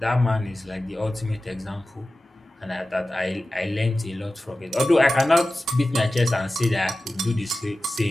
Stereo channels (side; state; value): both; normal; correlation 0.95